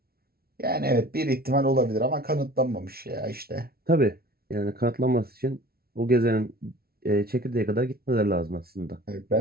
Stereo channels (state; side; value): late; left; 0.44 ms